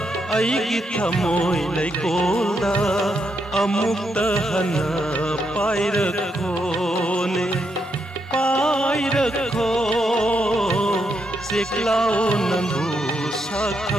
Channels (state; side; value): normal; both; correlation 0.80